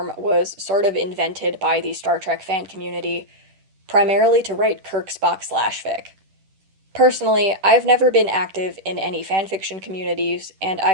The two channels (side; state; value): left; late; 10 ms